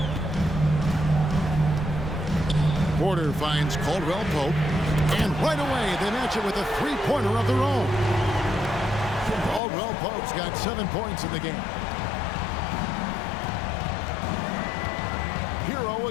Porter finds Caldwell Pope. And right away, they match it with a 3-pointer of their own. Caldwell Pope's got 7 points in the game. Hero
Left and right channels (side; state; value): right; drops out; at 9.6 s